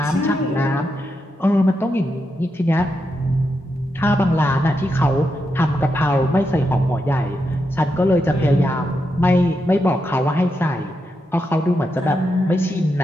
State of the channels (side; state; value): both; normal; correlation 0.85